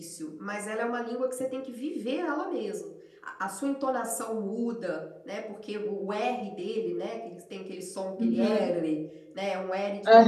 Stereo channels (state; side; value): identical; both; correlation 1.00